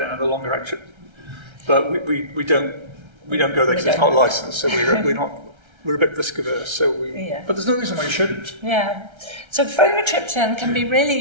and the longer acting. But we don't go there because it's not licensed, so we're a bit risk averse. So but there's no reason why you shouldn't. Yeah. So frovatriptan can be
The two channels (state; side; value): late; left; 1.3 ms